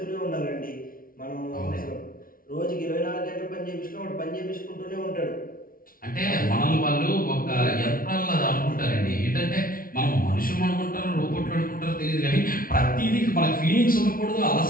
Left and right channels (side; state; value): right; late; 0.42 ms